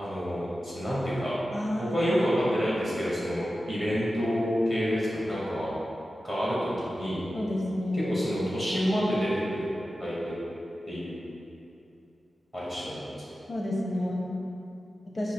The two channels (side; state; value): both; normal; correlation 0.93